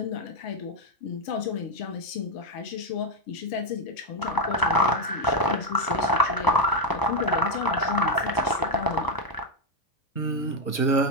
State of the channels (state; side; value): late; right; 1.0 ms